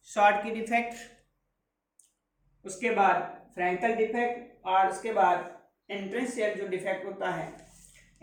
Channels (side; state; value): both; identical; correlation 1.00